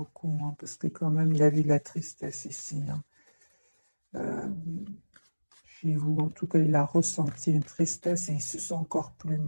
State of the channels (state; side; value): inverted; both; correlation -1.00